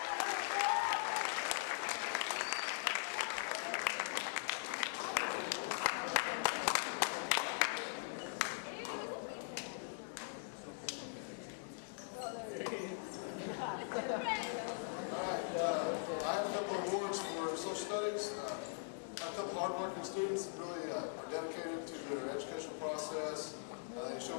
I have a couple of awards for social studies. I have a couple of hardworking students that really are dedicated to their educational process. They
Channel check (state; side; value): silent; right; digital silence